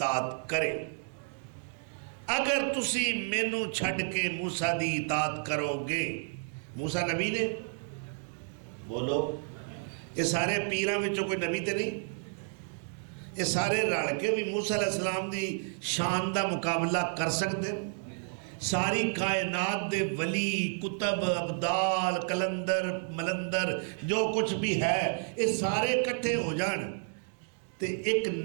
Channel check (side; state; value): left; silent; 57 dB below the other